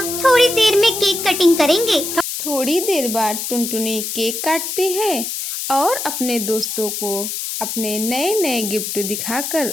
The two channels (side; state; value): left; noise; hiss, 4 dB below the sound